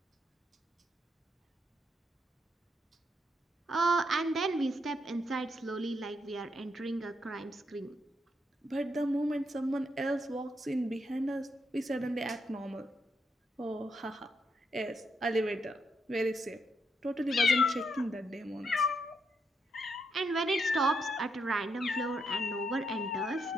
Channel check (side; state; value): both; normal; correlation 0.79